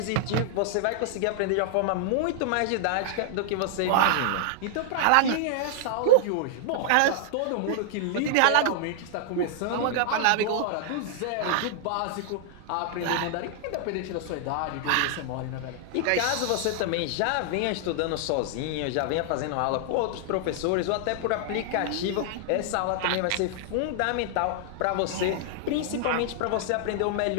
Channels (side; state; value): both; different; correlation -0.01